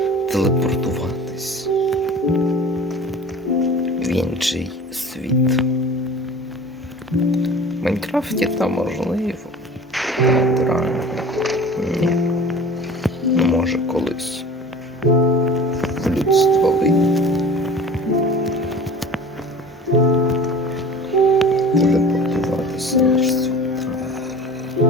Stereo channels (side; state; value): both; normal; correlation 0.40